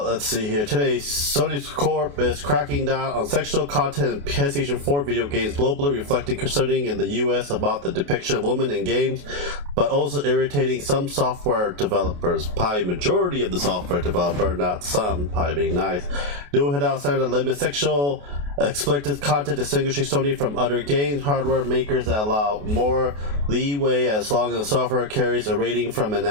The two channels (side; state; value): left; late; 28 ms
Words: see here. Today, Sony Corp is cracking down on sexual content in PlayStation 4 video games globally, reflecting concerning in the US about the depiction of women in games, but also irritating some software developers. Probably majority of the software developer, not some, probably being nice. New head outside that limit sexual explicit content, distinguishing Sony from other games hardware makers that allow more leeway as long as the software carries a rating from a